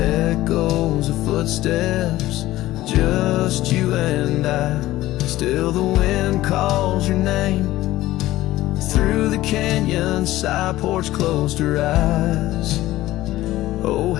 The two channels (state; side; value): quieter; right; 16.1 dB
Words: of footsteps, just you and I. Still the wind calls your name through the canyon side. Porch closed her eyes, oh